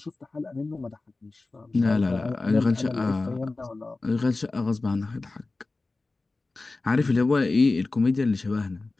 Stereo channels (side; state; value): right; quieter; 3.4 dB